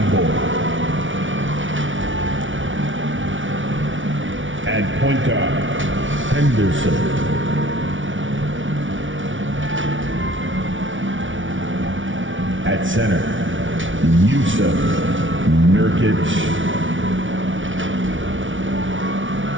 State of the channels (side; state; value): left; late; 0.56 ms